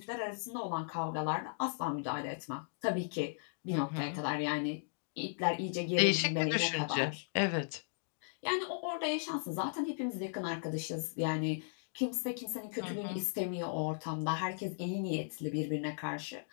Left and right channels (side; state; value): right; silent; digital silence